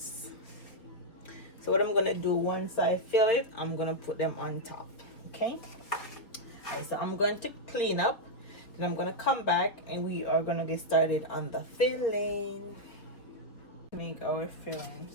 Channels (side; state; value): right; late; 4.1 ms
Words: So what I'm gonna do, once I fill it, I'm gonna put them on top. Okay. Alright, so I'm going to clean up, then I'm gonna come back and we are gonna get started on the filling. Make our filling.